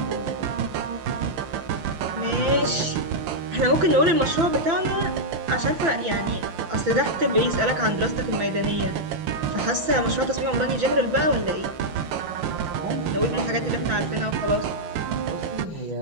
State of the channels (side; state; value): left; late; 6.0 ms